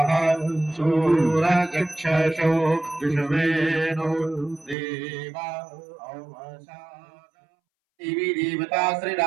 शूरचक्षुषो विश्वेनो देवा देवी देवता श्री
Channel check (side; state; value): left; drops out; at 4.8 s